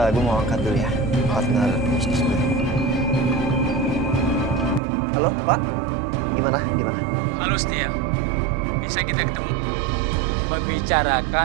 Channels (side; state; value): left; drops out; at 4.8 s